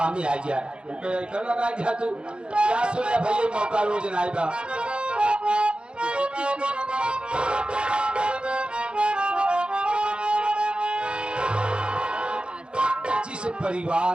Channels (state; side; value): late; left; 0.055 ms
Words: ही आ जाए कर लगाई दिया तू क्या सुने भैया मौका रोज ना आएगा। जिस